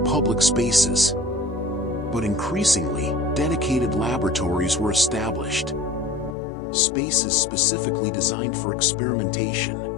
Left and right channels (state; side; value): drops out; right; at 6.4 s